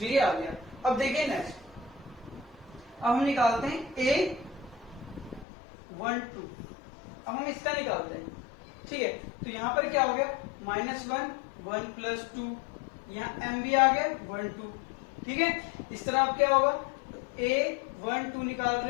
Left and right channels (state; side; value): drops out; right; at 5.5 s